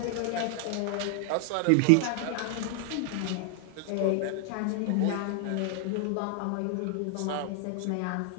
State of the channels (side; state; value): both; different; correlation 0.00